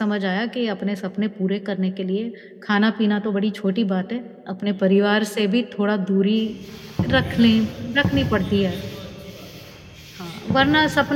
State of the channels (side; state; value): both; identical; correlation 1.00